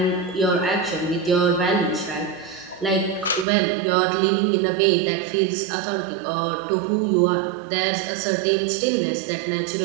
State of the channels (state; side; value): drops out; left; at 3.5 s